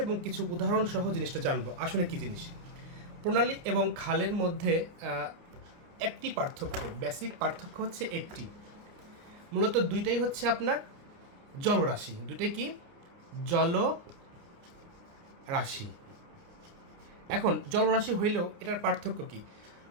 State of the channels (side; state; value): left; late; 29 ms